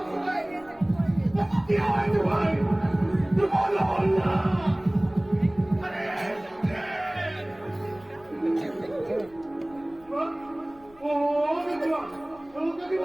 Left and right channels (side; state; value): left; noise; rumble, 27 dB below the sound